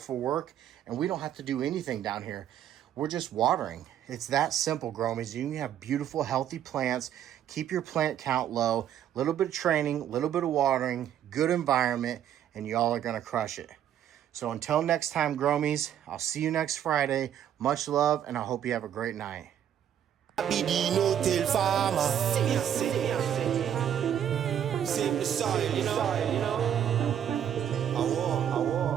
work, and we don't have to do anything down here. We're just watering. It's that simple, Gromies. You can have beautiful, healthy plants. Keep your plant count low. A little bit of training, a little bit of watering, good environment, and y'all are going to crush it. So until next time, Gromies, I'll see you next Friday. Much love, and I hope you have a great night. I be the no-till farmer. Save the soil, you know.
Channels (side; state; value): left; quieter; 10.0 dB